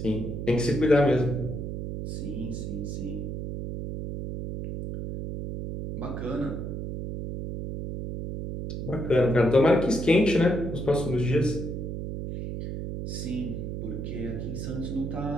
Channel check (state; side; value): noise; right; hum, 5 dB below the sound